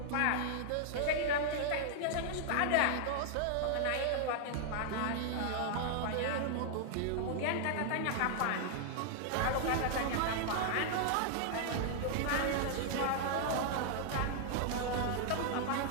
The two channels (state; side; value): different; both; correlation 0.00